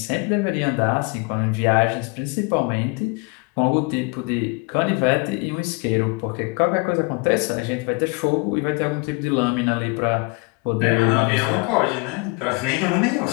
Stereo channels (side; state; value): right; quieter; 29.9 dB